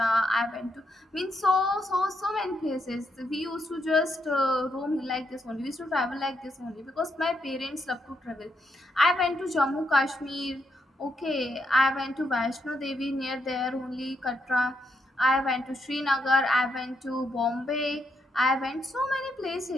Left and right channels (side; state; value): both; normal; correlation 0.79